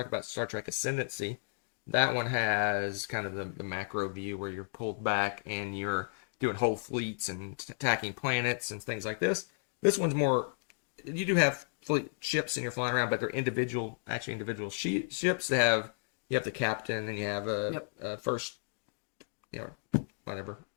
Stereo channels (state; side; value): silent; right; digital silence